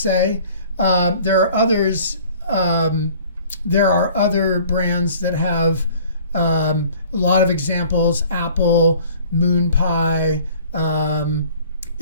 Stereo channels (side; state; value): both; inverted; correlation -0.51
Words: There are others, there are other brands that have a lot of examples: Apple, Moon Pie, even